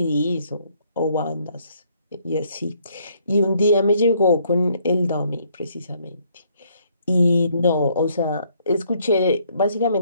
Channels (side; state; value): both; inverted; correlation -0.67